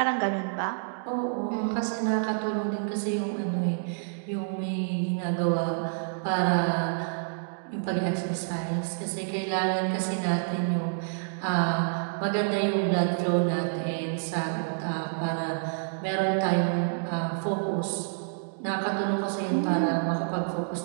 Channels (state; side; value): silent; left; digital silence